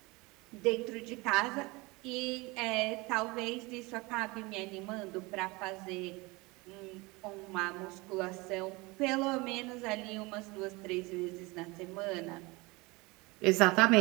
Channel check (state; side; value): quieter; left; 24.4 dB